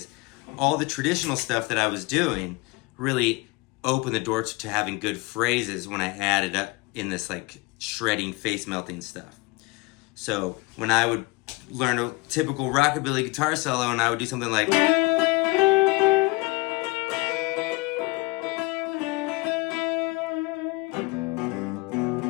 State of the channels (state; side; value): quieter; right; 24.5 dB